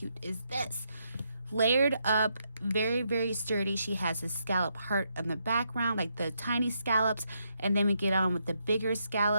is this? Layered up, very sturdy. She has a scallop heart in the background, like the tiny scallops, and then we get on with the bigger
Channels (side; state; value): both; inverted; correlation -0.79